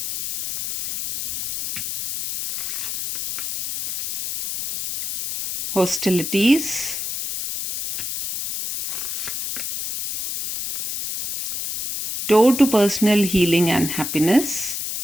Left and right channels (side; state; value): left; noise; hiss, 5 dB below the sound